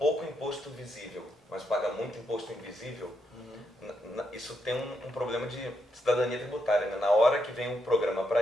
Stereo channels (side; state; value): both; normal; correlation 0.80